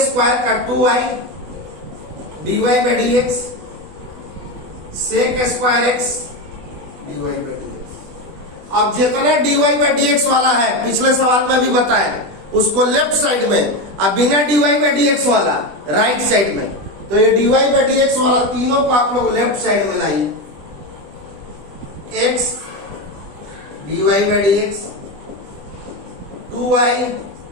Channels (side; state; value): left; late; 20 ms